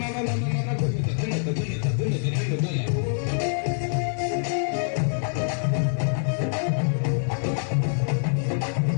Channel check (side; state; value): right; silent; 62 dB below the other